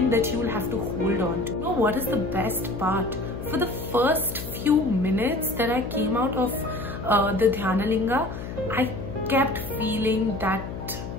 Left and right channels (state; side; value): noise; left; hum, 8 dB below the sound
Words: that you will have to hold on to. You know what is the best part? For the first few minutes that I came out of the Dhyana Linga, I kept feeling that